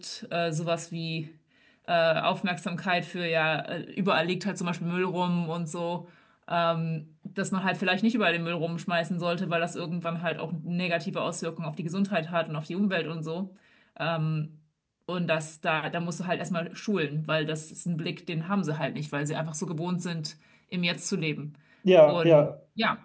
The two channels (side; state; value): both; identical; correlation 1.00